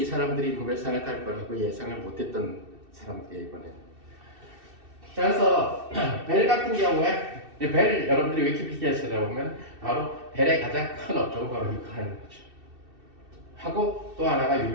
사람들이 노벨상을 탈 거라고 예상을 못했던 사람들이에요 이번에. 자, 그래서 벨 같은 경우에 벨 여러분들이 위키피디아에 찾아보면 바로 벨의 가장 큰 업적은 바로 이거 하는 거죠. 하고 또 하나가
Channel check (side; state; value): left; late; 2.7 ms